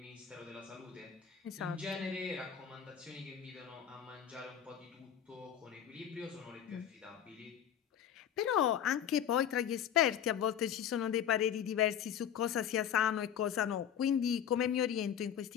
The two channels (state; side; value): quieter; right; 9.3 dB